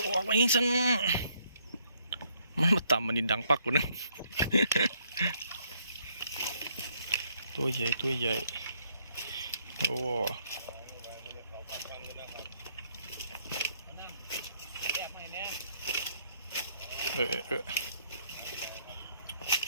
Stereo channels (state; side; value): inverted; both; correlation -0.69